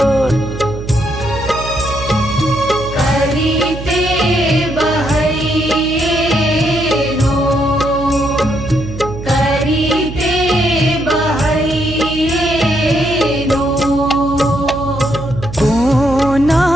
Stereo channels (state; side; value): noise; right; hum, 10 dB below the sound